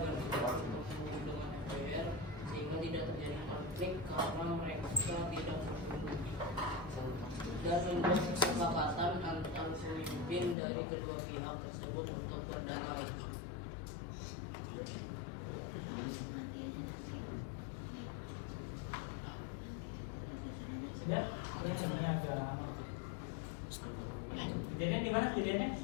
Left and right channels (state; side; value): drops out; right; at 10.6 s